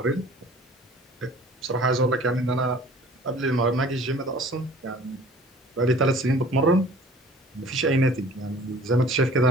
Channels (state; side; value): normal; both; correlation 0.49